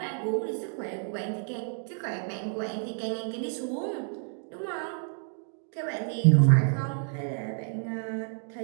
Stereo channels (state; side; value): silent; left; 58 dB below the other